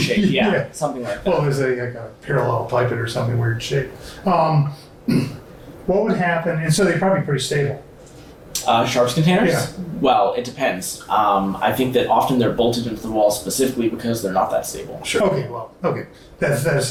shape, Yeah. something like that. Well, there's like a parallel pipette or something weird shape. What would happen, and so they're probably pretty stable. Sharps containers? Yeah. Well, it depends. I think that often they're bolted into the wall specifically because they're not that stable. Sure. Okay, that's that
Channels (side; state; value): both; identical; correlation 1.00